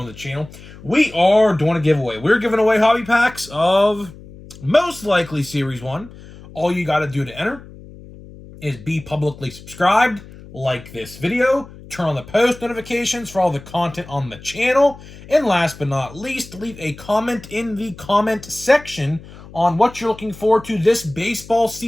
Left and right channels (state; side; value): noise; left; hum, 18 dB below the sound